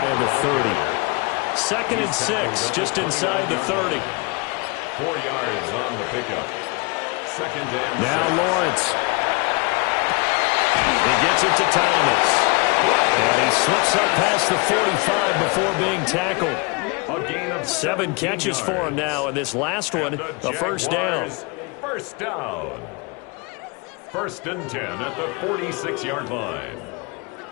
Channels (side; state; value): right; quieter; 29.0 dB